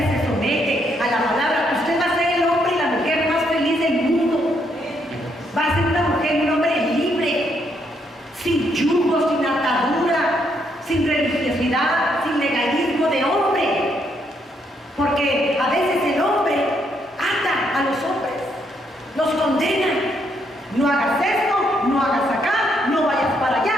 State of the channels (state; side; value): normal; both; correlation 0.74